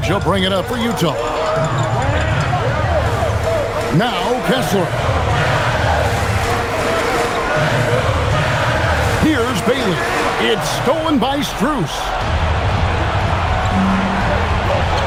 He'll bring it up for Utah. Now Kessler. Here's Bailey. It's stolen by Strus.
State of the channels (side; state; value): both; identical; correlation 1.00